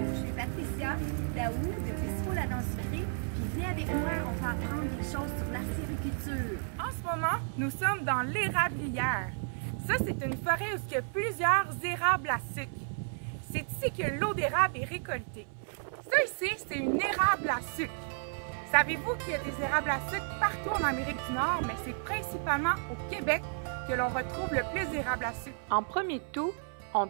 Je suis Patricia Daou de Bistrot La Dent Sucrée, puis viens avec moi, on va apprendre des choses sur l'acériculture. En ce moment, nous sommes dans l'érablière. Ça, c'est une forêt où il y a plusieurs érables à sucre. C'est ici que l'eau d'érable est récoltée. Ça ici, c'est une érable à sucre. Savez-vous qu'il y a des érables à sucre partout en Amérique du Nord, mais c'est principalement au Québec que l'on retrouve le plus d'érables à sucre. En premier tout, on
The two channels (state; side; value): silent; left; 56 dB below the other